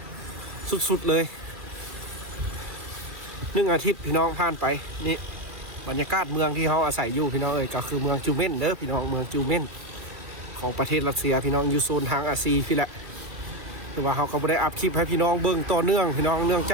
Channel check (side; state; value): left; late; 2.4 ms